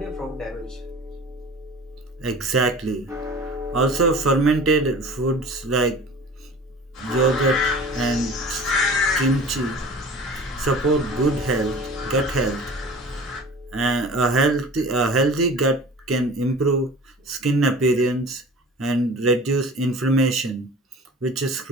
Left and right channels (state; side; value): normal; both; correlation 0.41